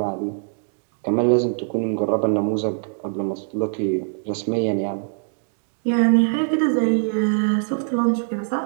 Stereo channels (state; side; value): silent; left; digital silence